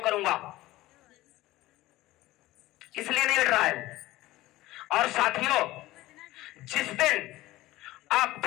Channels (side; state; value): right; quieter; 17.4 dB